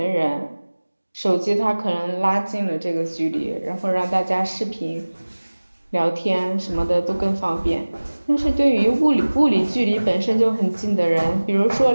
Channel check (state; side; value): inverted; both; correlation -1.00